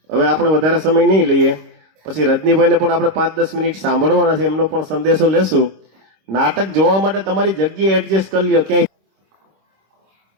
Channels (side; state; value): left; late; 26 ms